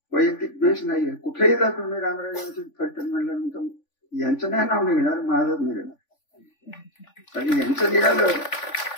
वैयक्तिक द्वेष नाहीये. कुठेही जा तुम्ही रामराजांचे फलटण म्हणल्यानंतर यांचं नाही नाव निघणार, माझंच निघणार. आणि यांचं निघालं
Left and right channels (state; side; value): late; right; 3.5 ms